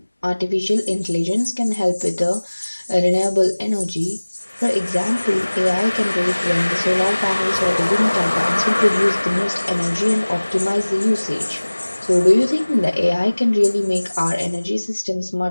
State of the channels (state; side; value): inverted; both; correlation -1.00